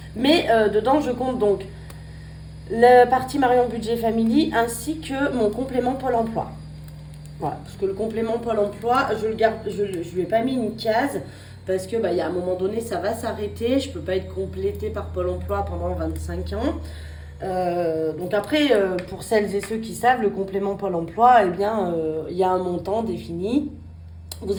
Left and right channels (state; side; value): identical; both; correlation 1.00